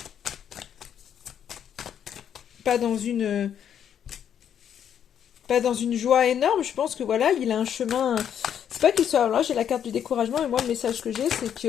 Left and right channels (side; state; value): right; quieter; 9.0 dB